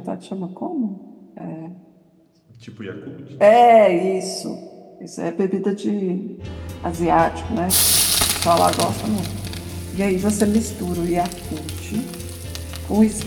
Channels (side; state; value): both; identical; correlation 1.00